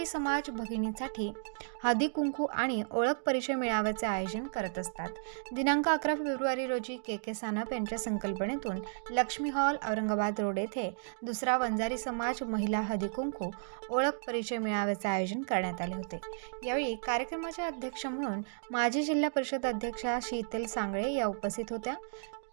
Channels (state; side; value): silent; left; digital silence